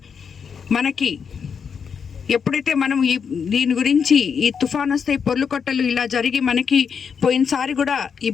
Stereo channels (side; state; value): right; quieter; 6.5 dB